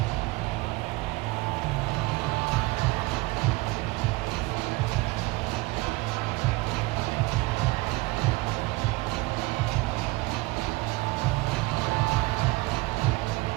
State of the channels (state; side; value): quieter; left; 21.9 dB